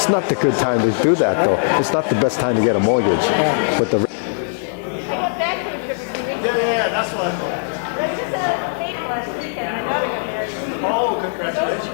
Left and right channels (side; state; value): right; silent; digital silence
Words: not the good time to do that, though. It's not the best time to get a mortgage. Yeah. With the That's what I thought. Oh,